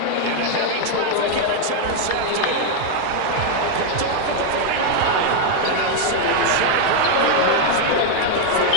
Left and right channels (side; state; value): both; different; correlation 0.00